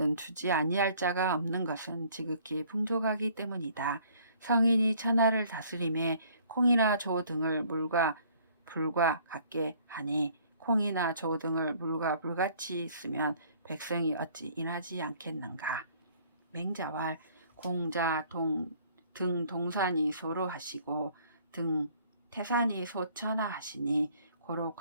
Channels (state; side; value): inverted; both; correlation -0.58